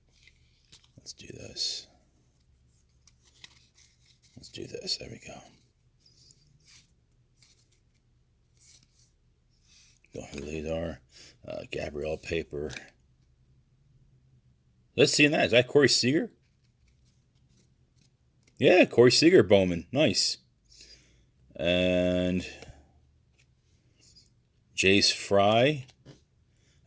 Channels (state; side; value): identical; both; correlation 1.00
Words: this. Let's do this. There we go. Don't know who these are. Gabrielle paper. Let's see that. Is that Corey Seager? Yeah, Corey Seager Bowman. Nice. And Jace Fry.